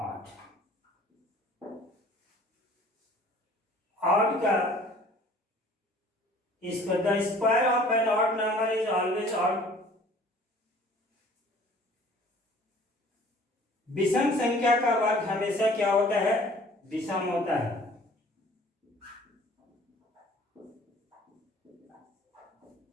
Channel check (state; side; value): normal; both; correlation 0.52